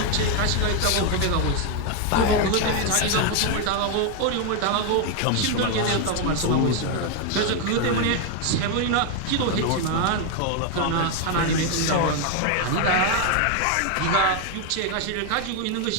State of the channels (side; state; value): both; different; correlation 0.01